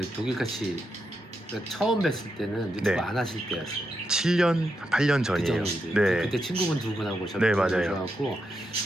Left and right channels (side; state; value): both; normal; correlation 0.84